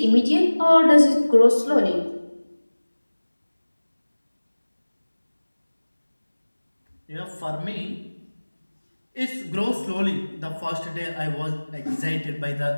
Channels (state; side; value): inverted; both; correlation -1.00